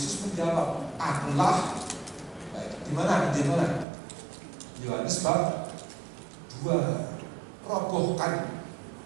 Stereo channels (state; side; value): drops out; left; at 3.9 s